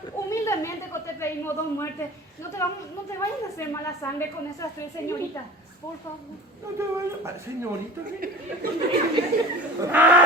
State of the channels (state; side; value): normal; both; correlation 0.39